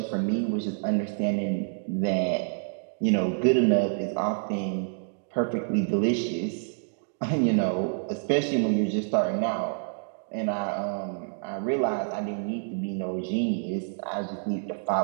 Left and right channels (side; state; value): left; silent; digital silence